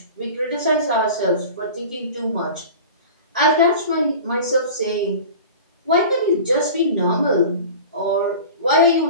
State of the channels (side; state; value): both; inverted; correlation -0.37